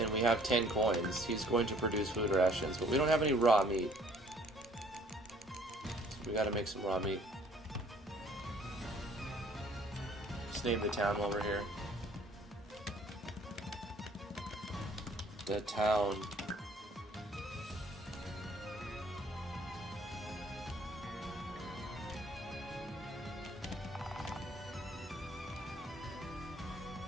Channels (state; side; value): normal; both; correlation 0.58